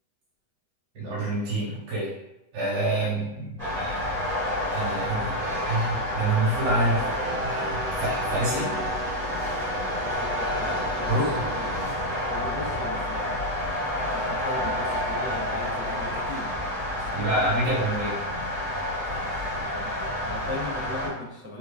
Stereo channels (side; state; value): left; late; 8.0 ms